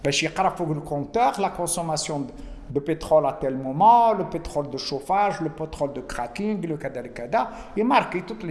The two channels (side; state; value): both; identical; correlation 1.00